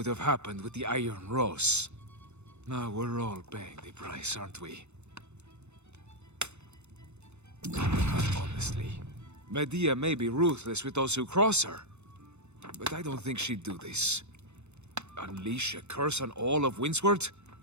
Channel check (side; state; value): left; late; 0.82 ms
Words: have happened with the Iron Rose. Now we're all paying the price, aren't we? Honestly, Medea may be ruthless with those who cross her, but I don't think she'd do this. Unleash a curse on all of Windsward?